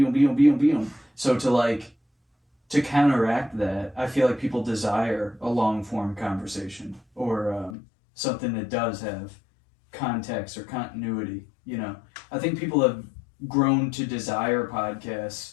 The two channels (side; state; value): right; drops out; at 7.8 s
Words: So to counteract that, I feel like people desire a long-form conversation or something that does have context or continuity, you know? I think people have grown to desire